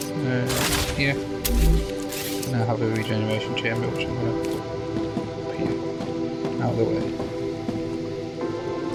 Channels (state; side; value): identical; both; correlation 1.00